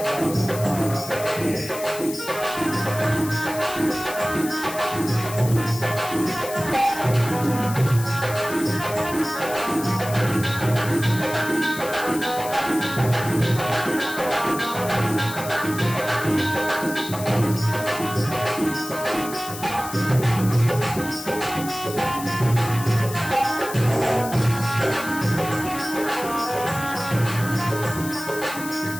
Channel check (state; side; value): noise; left; hiss, 11 dB below the sound